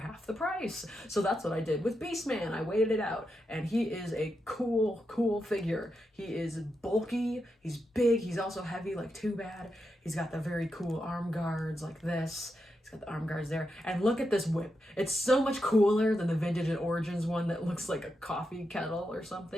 the price. So that's what I did with Beastman. I waited it out, and he is a cool, cool figure. He is bulky, he's big, he's also heavy like Too Bad. He's got the very cool arm guards like this. He's got the arm guards there. And look at this whip. It's so much cooler than the Vintage and Origins one that looks like a coffee kettle or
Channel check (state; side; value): normal; both; correlation 0.86